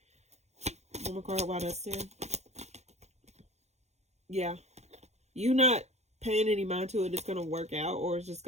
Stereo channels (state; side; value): late; left; 0.32 ms